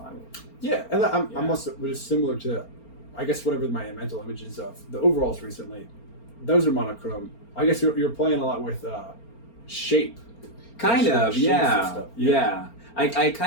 Yeah, and I'm also was similar to, I guess, whatever my mental images of the overalls recently. Those are monochrome. I guess you're playing a lot with shape. Kind of, yeah. I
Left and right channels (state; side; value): late; right; 4.4 ms